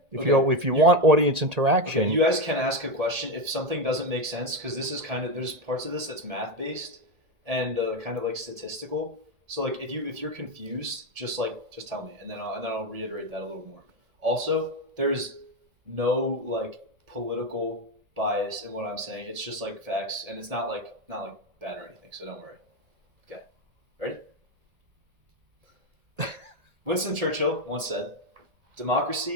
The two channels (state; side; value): late; left; 1.7 ms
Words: if you want audience interaction, okay, you guys can ask a question if something doesn't make sense, because this is there's parts of this that's math based and kind of like statistical. So like if you're confused, just tell me, and then I'll reiterate that a little more. Also, there's no like political bias in what I'm saying. It's just like facts, and it's not like bad or anything. So don't worry. Okay, ready? Winston Churchill once said,